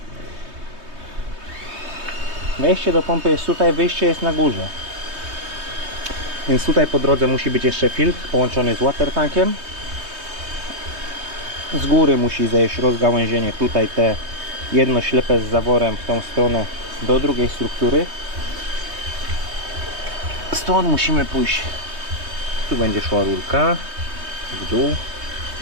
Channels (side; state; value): left; late; 3.2 ms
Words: Wejście do pompy jest tutaj, wyjście jest na górze. Więc tutaj po drodze musi być jeszcze filtr połączony z watertankiem. Z góry musi zejść rozgałęzienie, tutaj te jedno ślepe z zaworem w tą stronę do drugiej struktury. Stąd musimy pójść. Tu będzie szła rurka w dół,